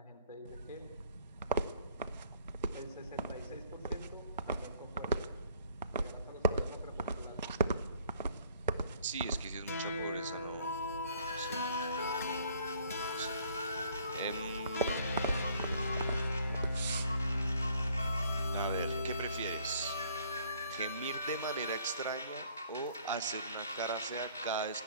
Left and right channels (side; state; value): both; inverted; correlation -0.59